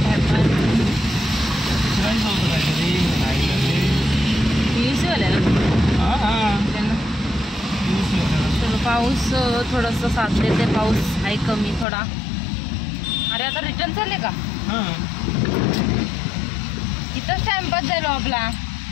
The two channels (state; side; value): drops out; right; at 11.9 s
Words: विचारायचं होतं काहीतरी. पीयूसीवाल्या त्यांना चलो. पाऊस थोडंसं साथ देते. पाऊस आहे कमी थोडा. अरे आता रिटर्न चालले का? इथंच टाइमपास झालो आपला.